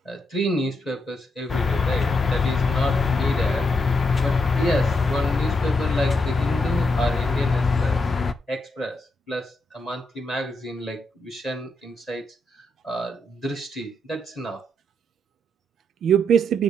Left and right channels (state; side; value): normal; both; correlation 0.80